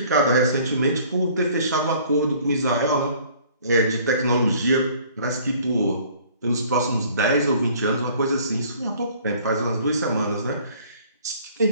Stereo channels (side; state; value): both; inverted; correlation -0.54